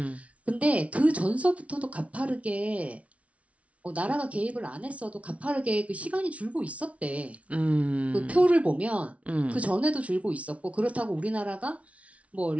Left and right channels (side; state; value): left; late; 0.064 ms